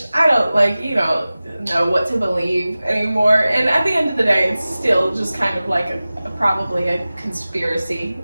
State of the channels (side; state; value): both; inverted; correlation -0.97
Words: I don't know what to believe anymore. And at the end of the day, it's still just kind of like probably a conspiracy.